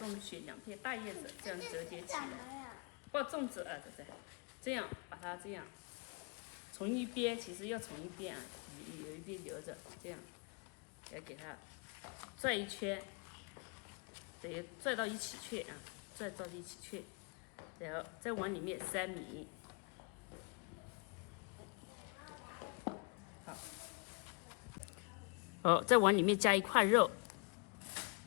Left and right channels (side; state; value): right; quieter; 34.4 dB